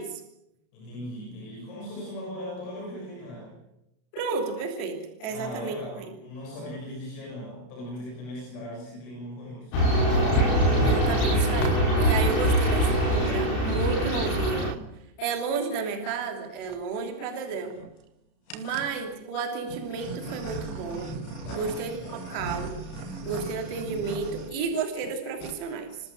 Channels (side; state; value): right; late; 32 ms